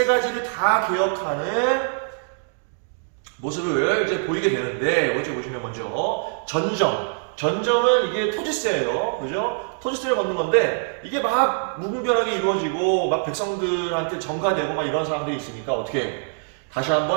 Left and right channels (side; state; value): left; silent; digital silence